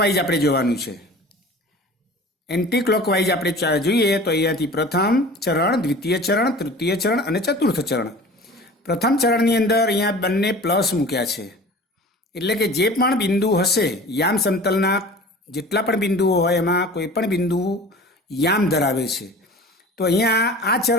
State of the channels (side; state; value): both; normal; correlation 0.41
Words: આપણે જોવાનું છે. એન્ટી ક્લોકવાઇઝ આપણે જોઈએ તો અહીંયાથી પ્રથમ ચરણ, દ્વિતીય ચરણ, તૃતીય ચરણ અને ચતુર્થ ચરણ. પ્રથમ ચરણની અંદર અહીંયા બંને પ્લસ મૂક્યા છે. એટલે કે જે પણ બિંદુ હશે, યામ સમતલના જેટલા પણ બિંદુઓ હોય એમાં કોઈ પણ બિંદુ યામ ધરાવે છે. તો અહીંયા આ